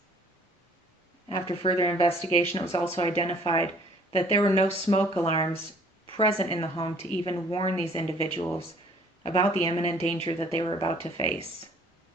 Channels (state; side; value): normal; both; correlation 0.56